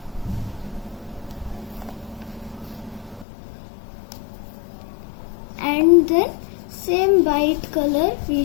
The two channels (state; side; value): drops out; right; at 3.2 s